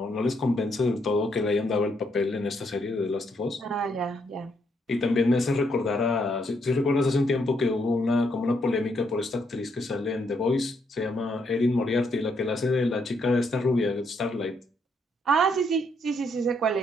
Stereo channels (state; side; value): normal; both; correlation 0.75